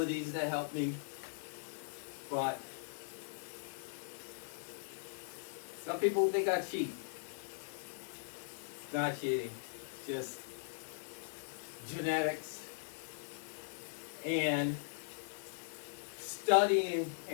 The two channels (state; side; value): silent; right; digital silence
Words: that help me, but some people think I cheat. It's not cheating, just genetics and studying